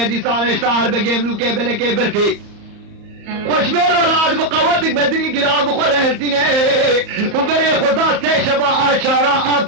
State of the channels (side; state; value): left; late; 34 ms